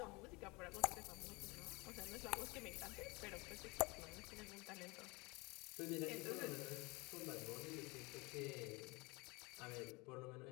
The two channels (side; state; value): right; quieter; 25.7 dB